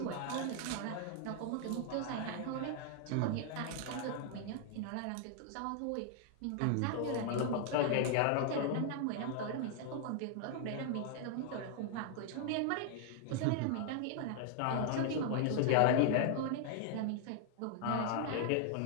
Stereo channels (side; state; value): both; different; correlation 0.00